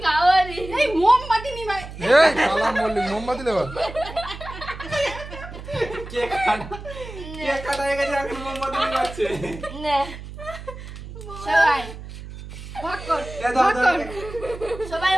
খাওয়ারি এই মোমবাতি নি ভাই এই কালাম বললি মোমবাতি দেবা কেক কাটা হয়ে গেছে এখন মোমবাতি নিয়ে না সবাই ভাগ কর সবাই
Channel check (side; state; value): right; noise; hum, 12 dB below the sound